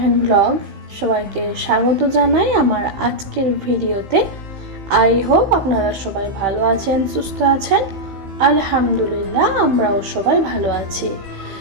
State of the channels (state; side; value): late; left; 15 ms